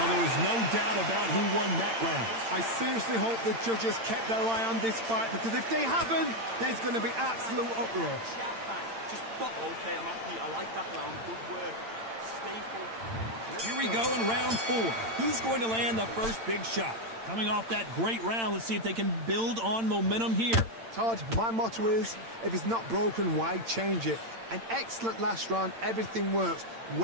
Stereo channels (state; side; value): late; left; 8.8 ms